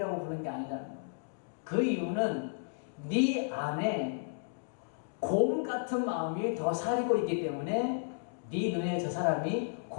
부르는 게 아니다. 그 이유는 네 안에 곰 같은 마음이 더 사리고 있기 때문에 네 눈에 저 사람이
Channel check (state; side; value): silent; right; digital silence